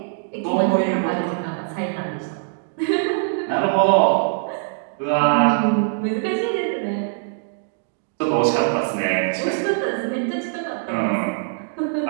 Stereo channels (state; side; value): silent; left; digital silence